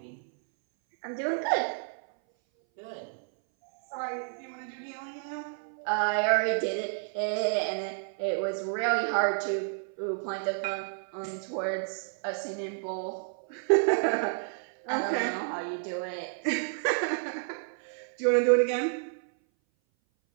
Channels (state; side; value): silent; left; 58 dB below the other